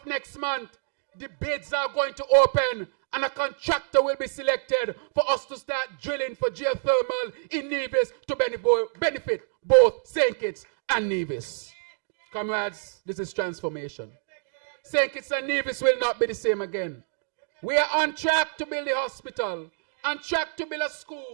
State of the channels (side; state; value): left; silent; 60 dB below the other